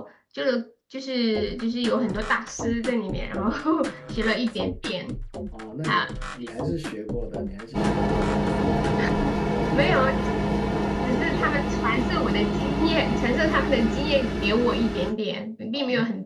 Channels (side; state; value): both; identical; correlation 1.00